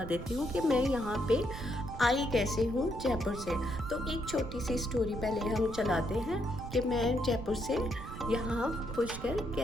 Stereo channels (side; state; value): right; noise; rumble, 10 dB below the sound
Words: देती हूँ कि मैं यहाँ पे आई कैसे हूँ जयपुर से। तो एक छोटी सी स्टोरी पहले हम चलाते हैं कि मैं जयपुर से यहाँ पुष्कर